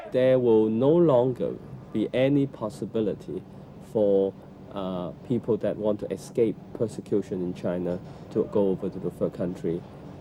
There will no longer be any possibility for people that want to escape persecution in China to go over to the third country.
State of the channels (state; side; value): identical; both; correlation 1.00